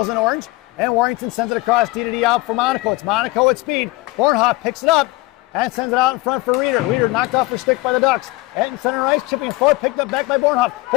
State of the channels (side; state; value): right; quieter; 21.2 dB